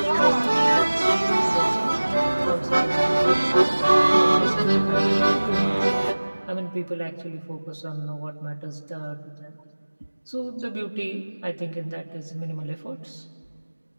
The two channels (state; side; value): inverted; both; correlation -1.00